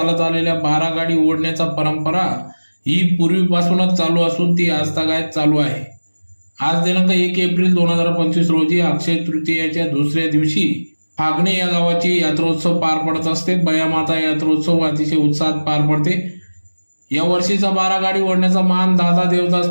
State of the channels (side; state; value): both; inverted; correlation -1.00